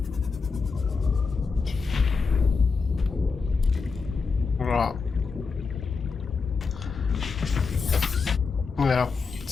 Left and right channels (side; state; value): right; quieter; 4.8 dB